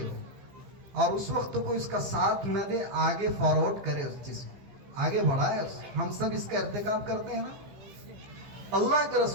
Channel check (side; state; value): left; late; 14 ms